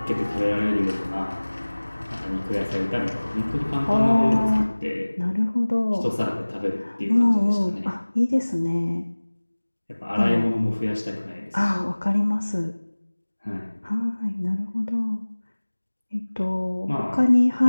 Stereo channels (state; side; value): inverted; both; correlation -1.00